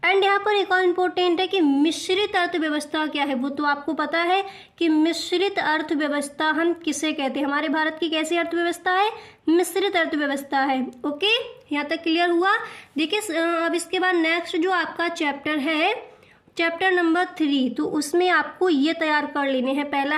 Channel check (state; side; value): identical; both; correlation 1.00